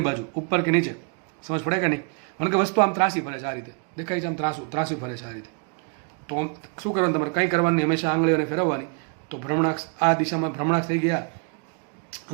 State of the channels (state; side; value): quieter; left; 36.8 dB